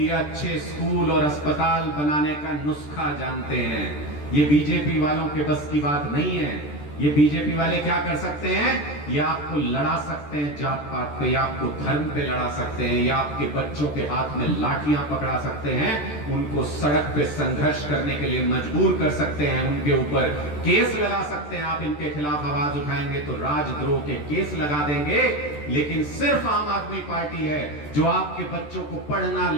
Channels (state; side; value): late; right; 14 ms